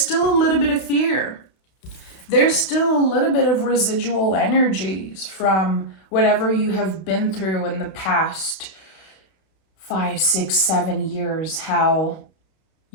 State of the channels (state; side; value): late; right; 32 ms